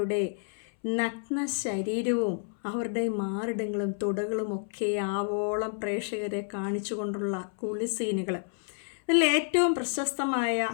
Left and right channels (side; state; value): right; silent; 58 dB below the other